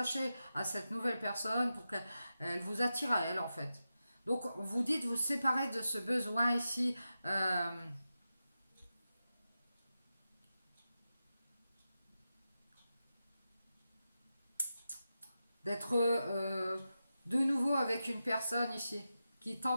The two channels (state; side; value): inverted; both; correlation -0.91